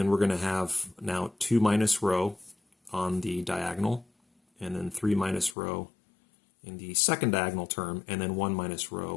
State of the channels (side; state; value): right; drops out; at 5.6 s